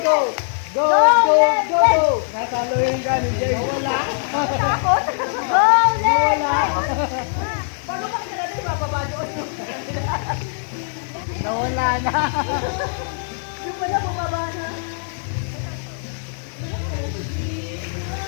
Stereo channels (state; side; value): silent; right; 65 dB below the other